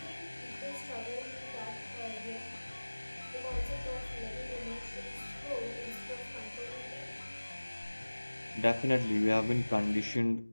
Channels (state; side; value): inverted; both; correlation -1.00